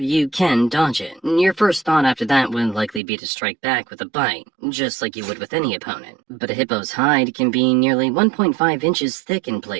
can dodge it. Your first thought after that would likely be to strike back with a bite, just like you would with any opponent. But a hippo's hide can be nearly 1.5 inches thick in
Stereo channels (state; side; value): drops out; left; at 3.0 s